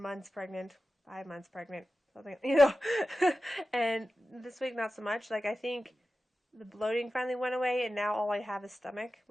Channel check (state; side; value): normal; both; correlation 0.93